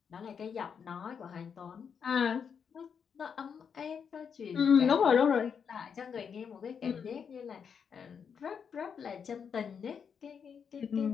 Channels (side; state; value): right; quieter; 6.8 dB